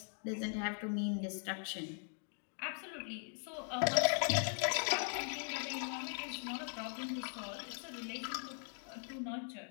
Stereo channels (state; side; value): silent; right; 51 dB below the other